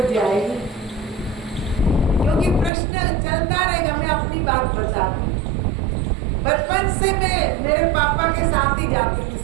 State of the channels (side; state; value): left; drops out; at 2.7 s